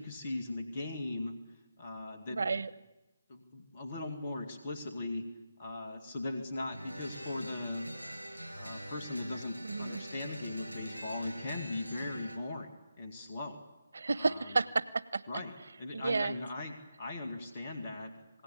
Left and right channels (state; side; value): inverted; both; correlation -0.88